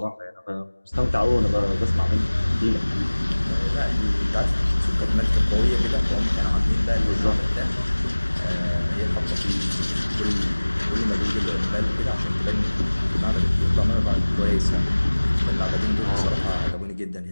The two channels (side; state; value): both; inverted; correlation -1.00